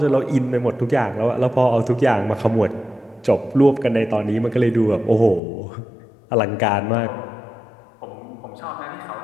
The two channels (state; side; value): drops out; right; at 5.4 s